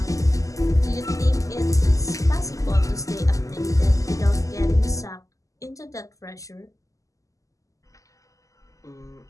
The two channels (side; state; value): right; late; 0.16 ms